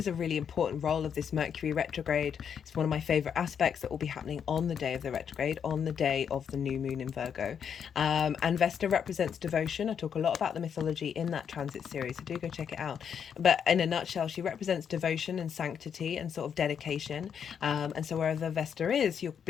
a really important role of this Mercury retrograde. It's one of my favorite aspects that will be happening on the day of the retrograde, on the day of the new moon in Virgo. And Vesta represents devotion. I talk a lot about the mythology in that transit series, so do go check it out. But in a nutshell, she represents devotion and sanctity and sort of dedication. And so wherever Vesta is, you're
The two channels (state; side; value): quieter; right; 7.7 dB